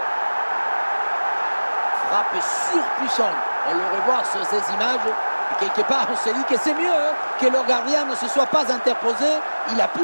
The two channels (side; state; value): both; inverted; correlation -1.00